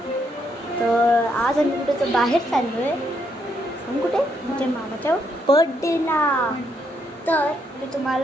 तर आज आम्ही कुठे तर बाहेर चाललो आहे. आम्ही कुठे म्हणजे मामाच्या बर्थडेला. तर मी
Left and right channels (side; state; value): both; normal; correlation 0.75